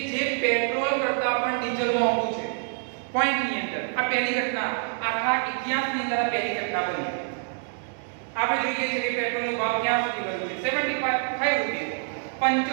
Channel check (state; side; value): silent; left; 61 dB below the other